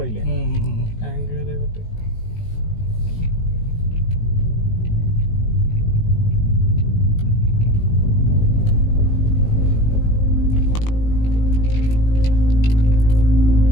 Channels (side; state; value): right; late; 19 ms